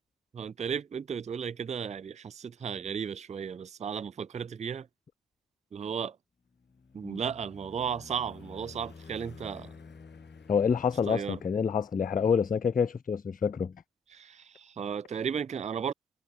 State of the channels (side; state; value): both; normal; correlation 0.59